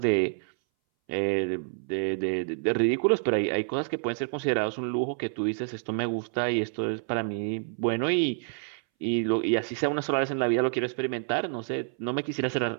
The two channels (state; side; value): silent; left; 59 dB below the other